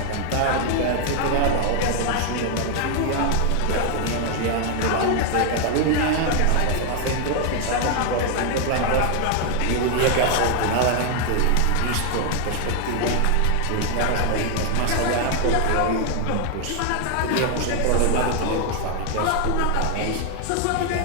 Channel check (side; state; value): both; different; correlation 0.00